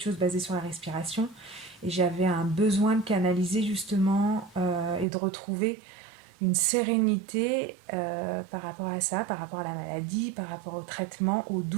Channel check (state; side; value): drops out; left; at 5.1 s